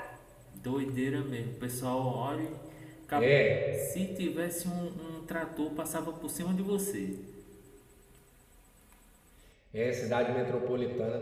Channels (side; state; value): both; identical; correlation 1.00